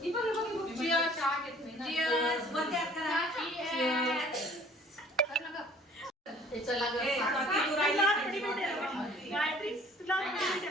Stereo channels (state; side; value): normal; both; correlation 0.53